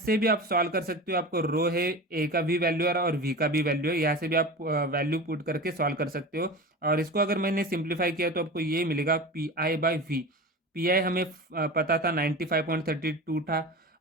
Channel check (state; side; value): normal; both; correlation 0.30